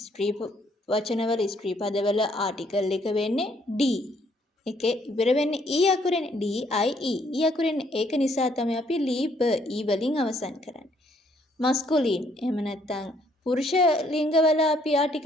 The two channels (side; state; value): both; normal; correlation 0.67